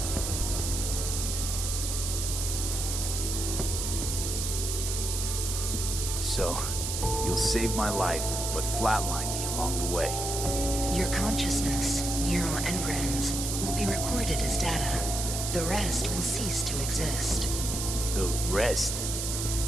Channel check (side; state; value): right; noise; hiss, 3 dB below the sound